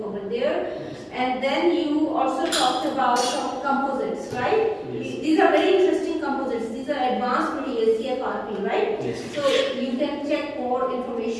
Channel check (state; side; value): identical; both; correlation 1.00